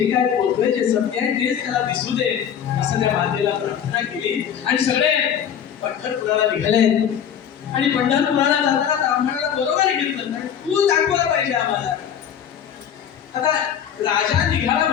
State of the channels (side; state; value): right; quieter; 8.8 dB